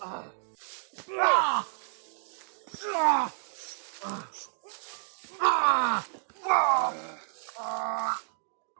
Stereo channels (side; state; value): left; silent; digital silence